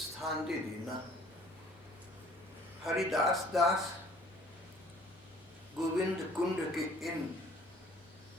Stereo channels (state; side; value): normal; both; correlation 0.54